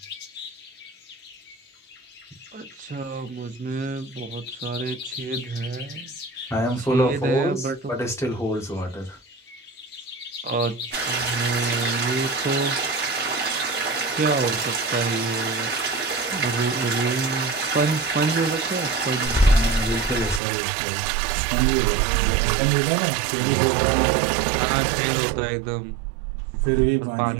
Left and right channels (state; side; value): drops out; left; at 20.4 s